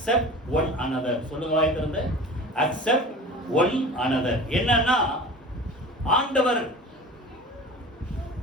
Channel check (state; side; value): normal; both; correlation 0.38